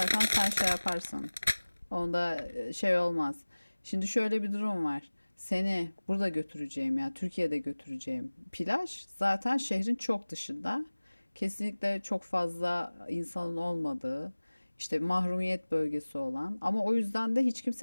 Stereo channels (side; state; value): both; inverted; correlation -1.00